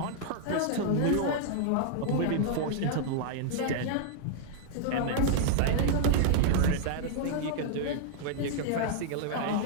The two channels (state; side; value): different; both; correlation -0.01